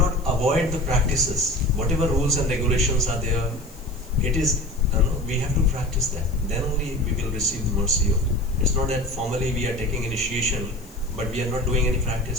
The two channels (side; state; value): left; noise; hiss, 23 dB below the sound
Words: avoid the practices. Whatever rules and regulations are there, it is, we have to practice that. Then only we will receive the mercy of it. It's not that formally we are taking initiation, but we are not doing any